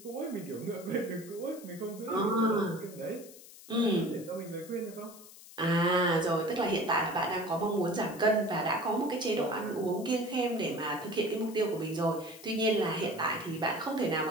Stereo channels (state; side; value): noise; left; hiss, 18 dB below the sound